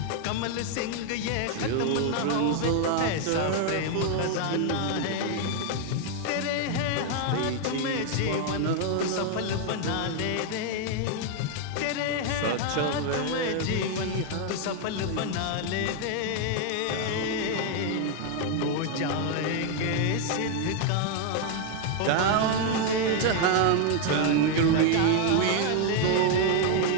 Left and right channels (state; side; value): different; both; correlation 0.00